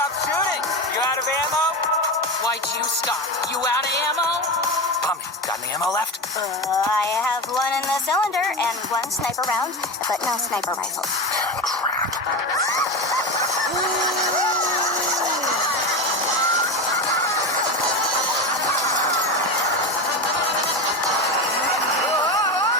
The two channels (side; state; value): both; normal; correlation 0.20